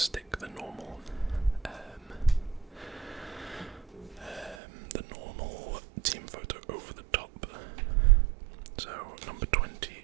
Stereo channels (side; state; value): left; drops out; at 4.5 s